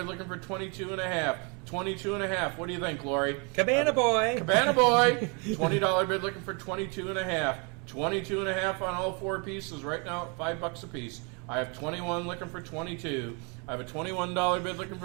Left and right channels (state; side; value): quieter; left; 33.5 dB